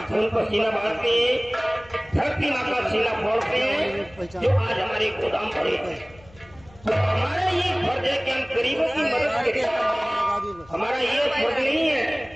खून पसीना बहाते हैं, धरती माँ का सीना फोड़ते हैं, जो आज हमारे गोदाम भरे हैं। तो हमारा ये फर्ज है कि हम गरीबों की मदद करें। हमारा ये फर्ज नहीं है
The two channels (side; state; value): left; noise; hum, 25 dB below the sound